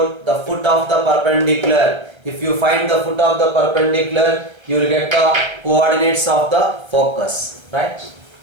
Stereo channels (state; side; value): late; left; 1.3 ms